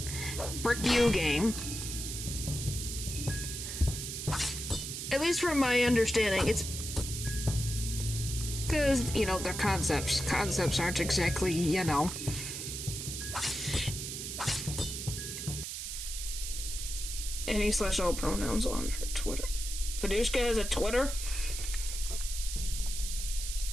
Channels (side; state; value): right; noise; hiss, 6 dB below the sound